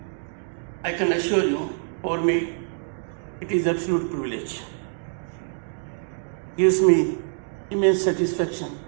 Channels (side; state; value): left; silent; 62 dB below the other